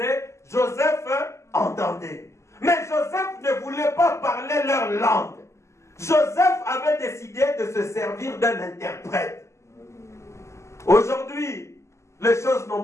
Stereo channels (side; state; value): right; late; 0.13 ms